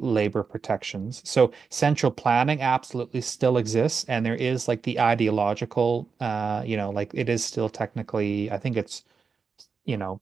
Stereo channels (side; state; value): left; quieter; 5.4 dB